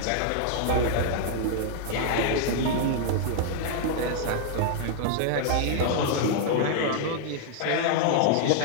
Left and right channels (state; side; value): different; both; correlation 0.00